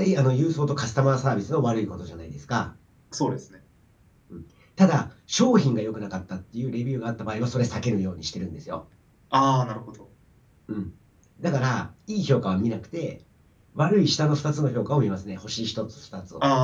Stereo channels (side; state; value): both; identical; correlation 1.00